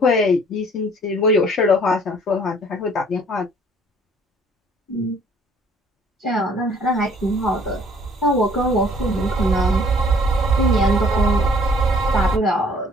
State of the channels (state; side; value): normal; both; correlation 0.57